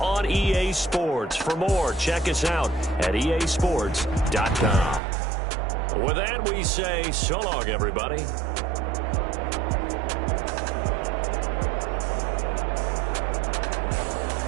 on EA Sports. For more, check us out at easports.com. With that, we say so long, everybody.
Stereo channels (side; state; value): left; drops out; at 5.0 s